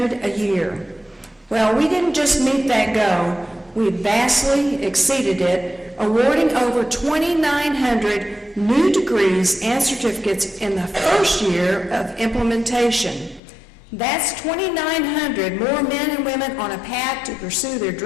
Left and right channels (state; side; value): drops out; right; at 13.4 s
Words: a year. Well, we didn't just meet that goal, we vastly exceeded it, awarding over 2,900 new degrees and certificates in the first year of implementation. That's 2,900 more men and women on a path to pursue their